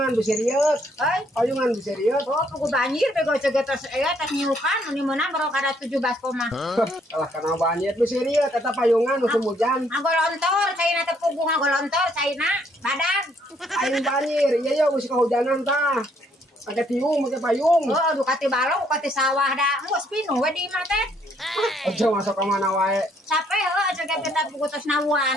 bisa riet. Payungan bisa riet. Oh, pugu banjir bego cegetos tas nyukan ini menang baru kada 17 koma. Kalah kena banjir bisa riet kata payungan musim hujan. Ngagolontor caina teh pugu ngagolontor caina badag. Aing banjir, iya ya musim kehujanan tah. Ada tiung pakai payung. Oh, aduh kati balong kati sawah dah. Engko spino we di imah teh. Aja masuk ke mana wae. Sape heuh aja kita pugu tos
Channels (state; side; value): normal; both; correlation 0.68